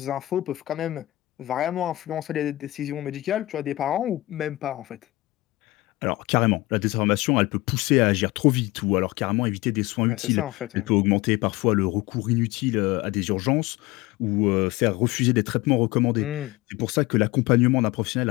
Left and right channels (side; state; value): right; quieter; 18.9 dB